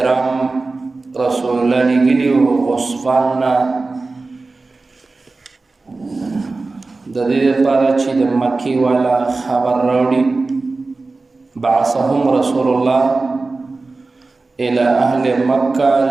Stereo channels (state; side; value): quieter; left; 3.6 dB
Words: رسول الله لیږلي وو غصفان نه د دې لپاره چې د مکې والا خبر راوړي بعثهم رسول الله الى اهل